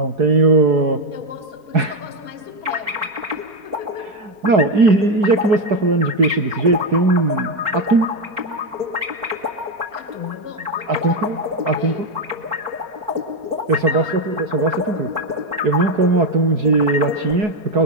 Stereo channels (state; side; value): late; left; 4.4 ms